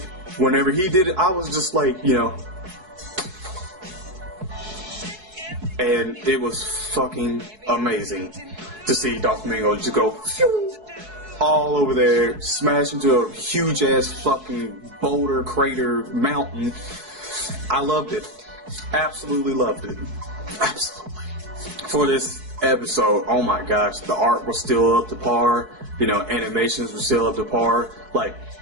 Whenever he did it, I was just like, and it was fucking amazing to see Doflamingo just go all over there, smash into a huge ass fucking boulder crater mountain. I loved it. Absolutely loved it. Absolutely. For this episode, oh my gosh, the art was still up to par. Animations were still up to par. Like,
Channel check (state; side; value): late; left; 4.7 ms